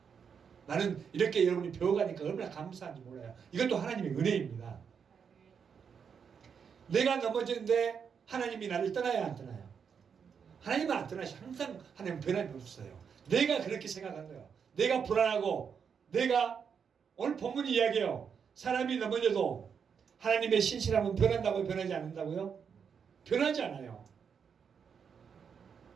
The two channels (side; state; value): left; quieter; 6.8 dB